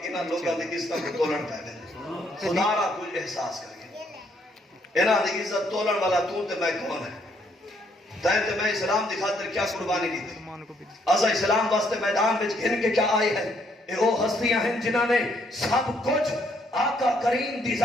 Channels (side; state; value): both; normal; correlation 0.70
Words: انہاں لوگاں دی عزت کو تولن پہ گئے. خدا را کچھ احساس کر کے انہاں دی عزت تولن والا تو تے میں کون ہے؟ تائیں تے میں اسلام دی خاطر کیا قربانی دی تھی؟ اساں اسلام واسطے میدان وچ گھن کے کیا آئے ہیں؟ اے وہ ہستیاں ہیں جنہاں نے سب کچھ آقا کریم دی